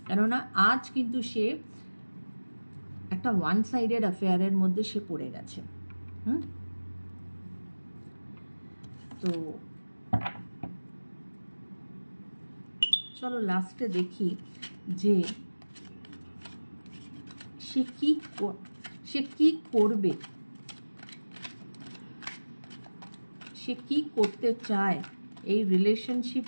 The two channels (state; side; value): inverted; both; correlation -1.00